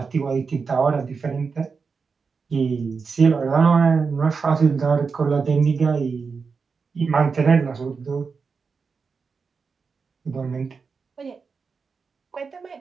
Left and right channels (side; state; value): left; quieter; 5.1 dB